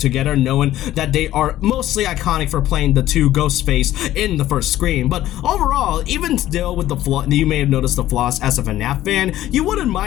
knowing that they are mostly iconic for playing the two Ghostface in the first Scream. But overall, even still with the flaw, you may have noticed the flaws as a FNAF fan, you wouldn't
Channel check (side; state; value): right; quieter; 13.9 dB